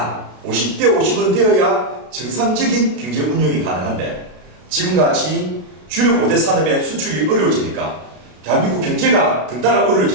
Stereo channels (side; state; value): left; late; 33 ms